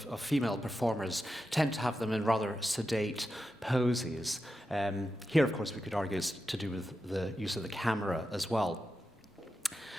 female performers tend to have them in rather sedate poses. Here, of course, we could argue it's to do with the use of the camera as well.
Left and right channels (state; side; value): normal; both; correlation 0.90